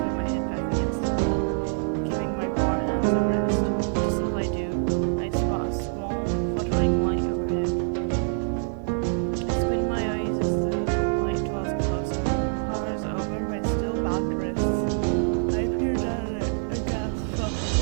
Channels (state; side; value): silent; left; digital silence